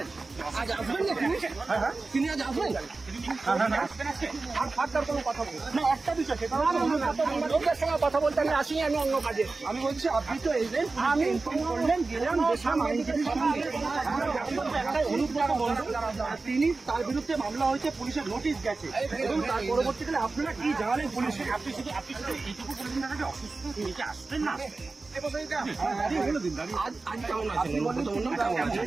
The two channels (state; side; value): quieter; left; 3.7 dB